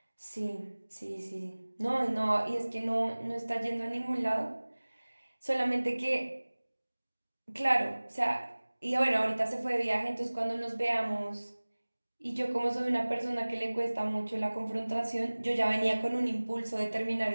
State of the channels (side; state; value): both; inverted; correlation -1.00